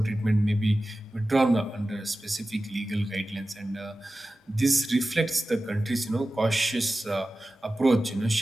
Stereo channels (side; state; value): both; normal; correlation 0.95